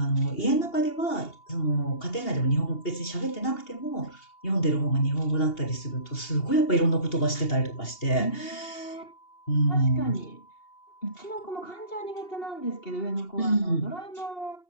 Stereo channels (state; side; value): late; right; 2.8 ms